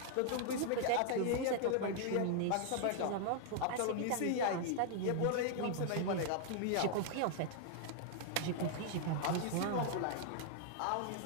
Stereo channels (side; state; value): both; different; correlation -0.01